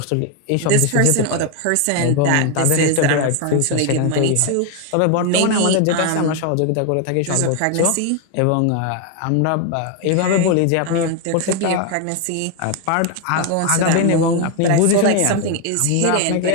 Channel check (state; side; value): different; both; correlation 0.01